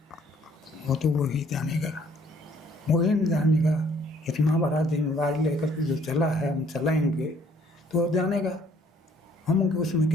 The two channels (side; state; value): both; normal; correlation 0.61